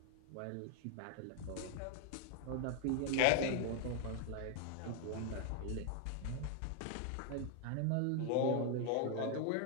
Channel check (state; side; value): different; both; correlation 0.00